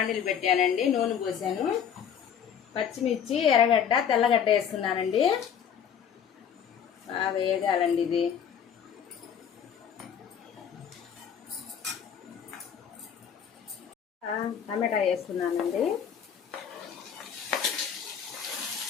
పెట్టానండి. నూనె పోసాను. పచ్చిమిర్చి, ఎర్రగడ్డ, తెల్లగడ్డ వేస్తున్నానండి. బాగా వేగాలండి. ఇది టమాటా వేస్తున్నానండి.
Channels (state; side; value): quieter; right; 8.1 dB